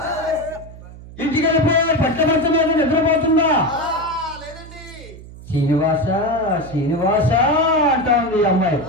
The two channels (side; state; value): right; noise; hum, 17 dB below the sound